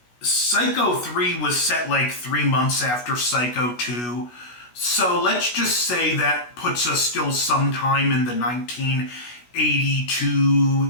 Psycho 3 was set like 3 months after Psycho 2. So let's just say that puts us still sometime in the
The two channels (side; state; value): right; late; 16 ms